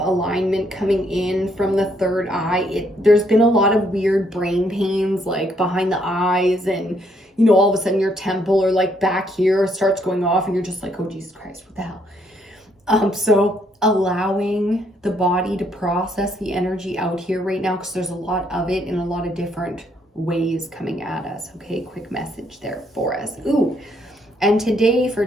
coming in from the third eye. There's been a lot of weird brain pains, like behind the eyes, and you know, all of a sudden your temple or like back here starts going off and you're just like, oh Jesus Christ, what the hell? So allowing the body to process the energy out here right now, because there's a lot of it in a lot of different ways coming at us. Okay, quick message there for us. Ooh. And today for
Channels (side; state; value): both; normal; correlation 0.71